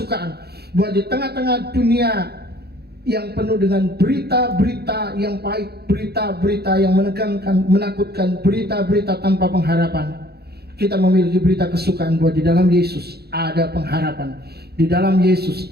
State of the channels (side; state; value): left; late; 0.47 ms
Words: bahwa di tengah-tengah dunia yang penuh dengan berita-berita yang pahit, berita-berita yang menegangkan, menakutkan, berita-berita tanpa pengharapan, kita memiliki berita kesukaan bahwa di dalam Yesus ada pengharapan, di dalam